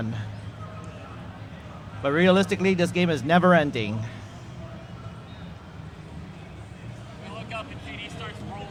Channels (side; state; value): both; identical; correlation 1.00